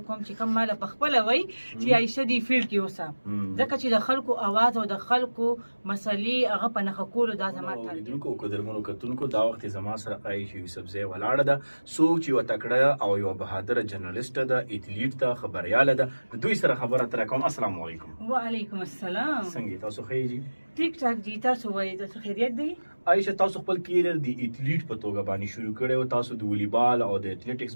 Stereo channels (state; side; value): inverted; both; correlation -1.00